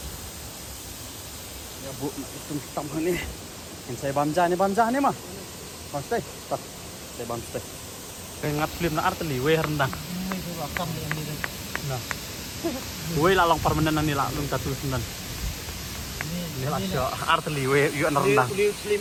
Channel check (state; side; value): identical; both; correlation 1.00